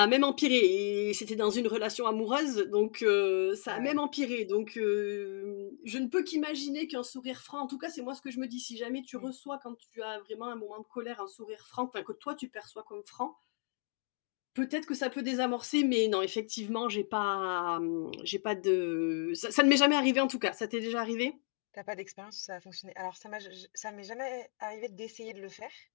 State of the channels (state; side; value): silent; right; 55 dB below the other